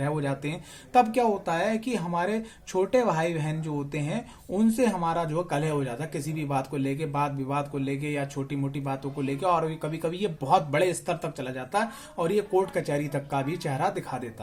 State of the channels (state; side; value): identical; both; correlation 1.00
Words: हो जाते हैं। तब क्या होता है कि हमारे छोटे भाई बहन जो होते हैं उनसे हमारा जो कलह हो जाता है, किसी भी बात को लेके, बात विवाद को लेके या छोटी मोटी बातों को लेके। और कभी कभी ये बहुत बड़े स्तर तक चला जाता है और ये कोर्ट कचहरी तक का भी चेहरा दिखा